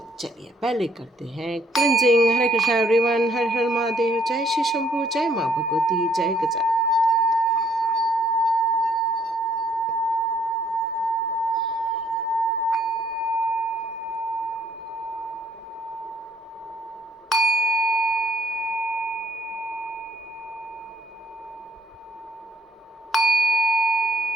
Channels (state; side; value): normal; both; correlation 0.66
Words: चलिए पहले करते हैं क्लिनजिंग। हरे कृष्णा एवरीवन, हर हर महादेव, जय श्री शंभू, जय माँ भगवती, जय गजा।